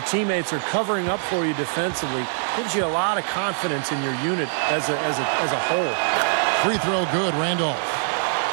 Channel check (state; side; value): silent; left; digital silence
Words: teammates are covering up for you defensively. Gives you a lot of confidence in your unit as a whole. Free throw good, Randolph.